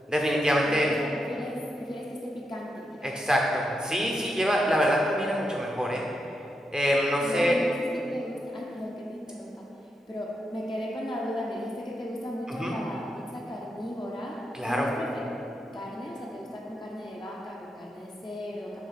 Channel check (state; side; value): normal; both; correlation 0.84